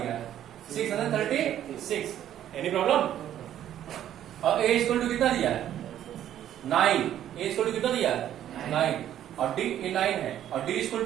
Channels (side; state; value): left; quieter; 11.2 dB